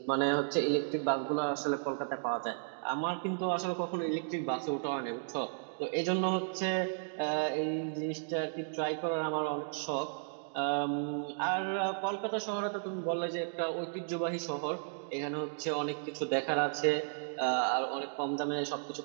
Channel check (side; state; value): left; silent; digital silence